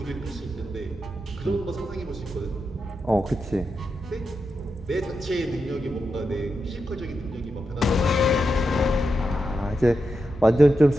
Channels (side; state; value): both; normal; correlation 0.87